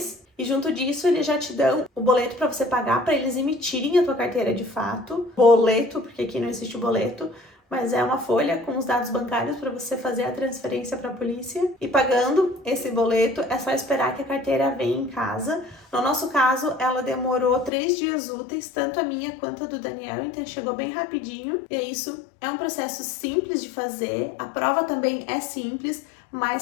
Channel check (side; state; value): right; drops out; at 17.7 s